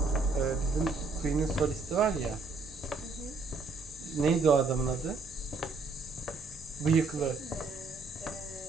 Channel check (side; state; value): left; quieter; 3.9 dB